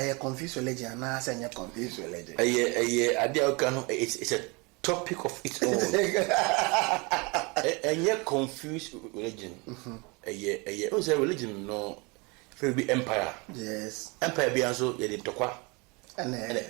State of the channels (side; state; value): left; quieter; 28.3 dB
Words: confused religion, and I say, confused religion. It's a topic of its own. And yet, confused religion. What's a religion? No, it be empire. Yes. Empire be also a tokwa. And